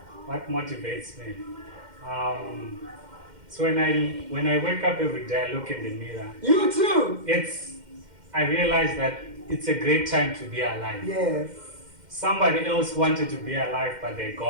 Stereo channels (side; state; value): left; late; 2.1 ms